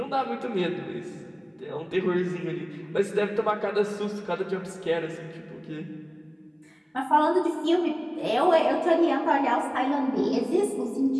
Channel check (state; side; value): identical; both; correlation 1.00